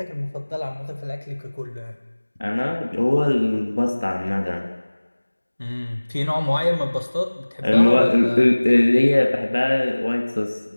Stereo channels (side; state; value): both; inverted; correlation -1.00